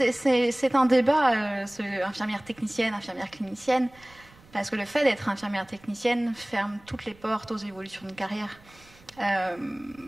un débat, infirmière technicienne, infirmière clinicienne, parce que le fait d'être infirmière technicienne ferme toutes les portes aux évolutions de carrière.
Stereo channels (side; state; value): right; noise; rumble, 26 dB below the sound